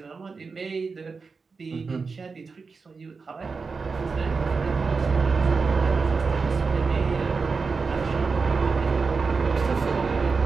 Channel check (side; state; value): left; quieter; 4.7 dB